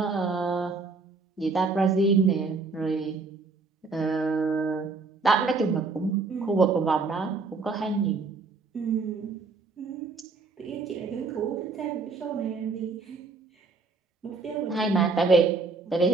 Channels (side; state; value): left; quieter; 4.2 dB